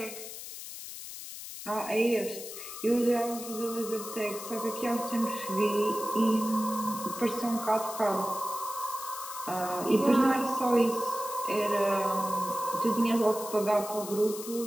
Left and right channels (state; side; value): noise; left; hiss, 10 dB below the sound